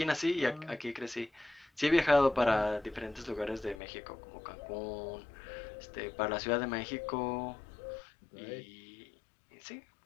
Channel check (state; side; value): drops out; right; at 3.8 s